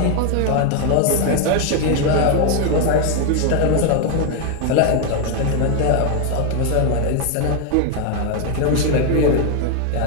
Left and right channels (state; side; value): different; both; correlation 0.01